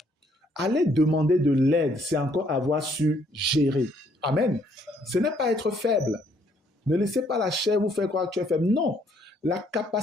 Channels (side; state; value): both; normal; correlation 0.67